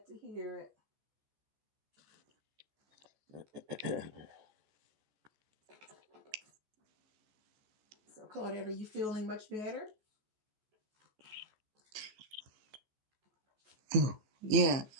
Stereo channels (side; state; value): left; late; 15 ms